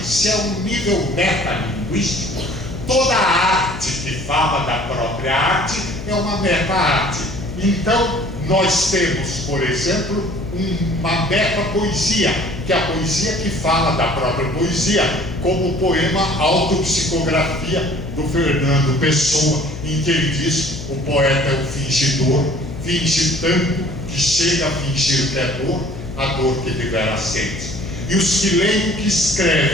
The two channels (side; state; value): left; noise; hum, 10 dB below the sound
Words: se é um nível metalinguístico, toda a arte que fala da própria arte é uma meta-arte. Então, nós temos, por exemplo, uma meta-poesia, que é a poesia que fala da própria poesia, como o poema Autopsicografia, do Fernando Pessoa, em que ele diz: o poeta é um fingidor, finge tanto que chega a fingir que é dor, a dor que devera sente. E os que leem o que